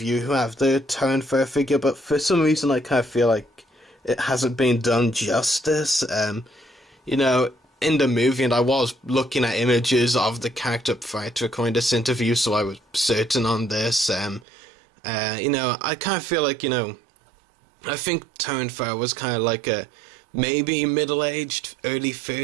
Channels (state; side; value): drops out; left; at 14.5 s